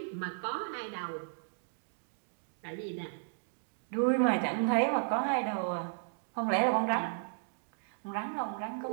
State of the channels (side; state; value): left; silent; digital silence